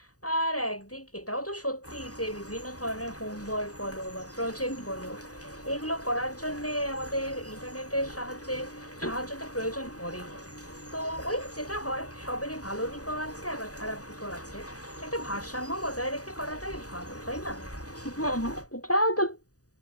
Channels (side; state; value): right; late; 0.67 ms